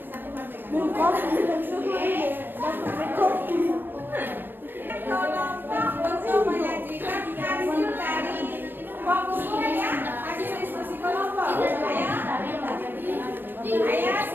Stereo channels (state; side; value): late; left; 0.095 ms